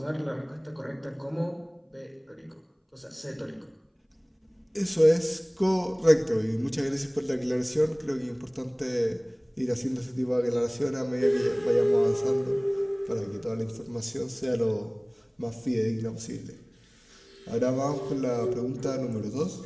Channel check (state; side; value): identical; both; correlation 1.00